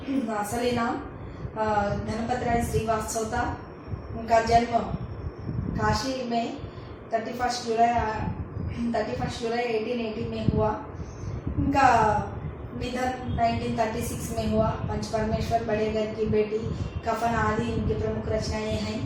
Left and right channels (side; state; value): both; identical; correlation 1.00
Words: असली नाम गणपत राय श्रीवास्तव था। उनका जन्म काशी में 31 जुलाई 1880 में हुआ। उनका निधन 1936 में हुआ। पंच परमेश्वर, बड़े घर की बेटी, कफन आदि इनकी प्रमुख रचनाएं हैं।